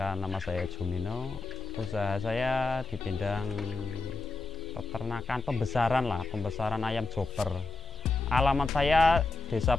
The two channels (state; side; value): quieter; right; 3.1 dB